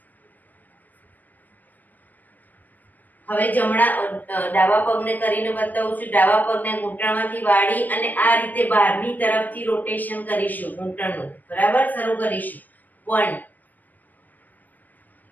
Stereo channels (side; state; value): right; late; 0.083 ms